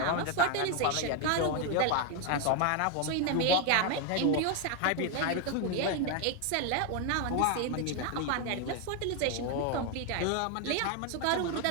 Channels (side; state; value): both; different; correlation 0.01